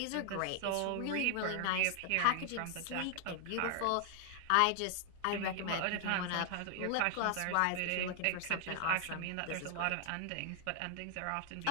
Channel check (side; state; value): both; different; correlation 0.00